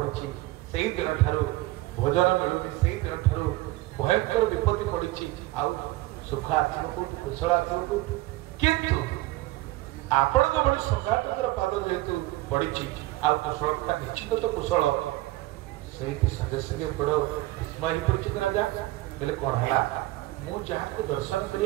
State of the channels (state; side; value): quieter; left; 18.4 dB